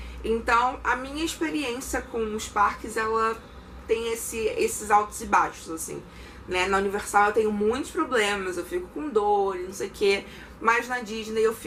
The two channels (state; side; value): identical; both; correlation 1.00